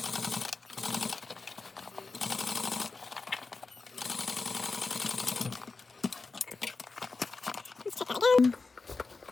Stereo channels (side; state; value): right; quieter; 4.0 dB